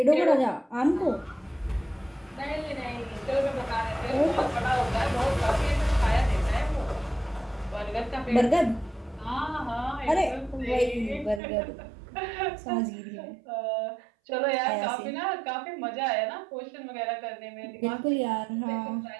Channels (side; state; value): left; drops out; at 11.4 s